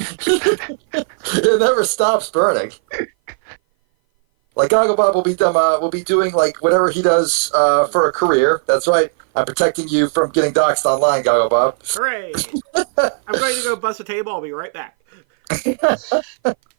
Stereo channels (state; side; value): silent; left; 58 dB below the other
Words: never stops burning. Like Goggle Bob will be doing like whatever he does for a career. That's right. I'm protecting you from getting doxxed online, Goggle Bob. Hooray! I'm going to go bust a table. I'll be right back.